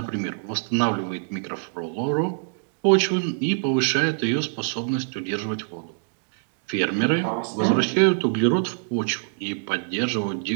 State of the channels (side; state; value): left; silent; digital silence